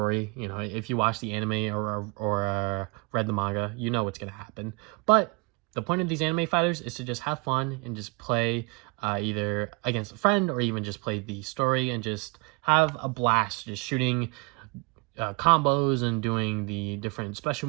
If you watch the anime or read the manga, you know what's going to happen. But the point of these anime fighters is to just have fun and just play either against a friend or even just play the story and just have a blast just shooting combos and doing the different special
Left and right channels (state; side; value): quieter; left; 29.8 dB